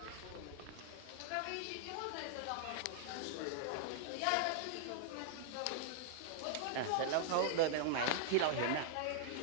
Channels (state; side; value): different; both; correlation -0.01